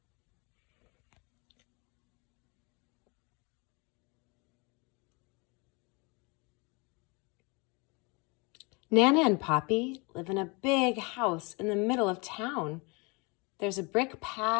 Nana and Poppy live in a big house in the middle of town. There's a brick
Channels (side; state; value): right; quieter; 29.0 dB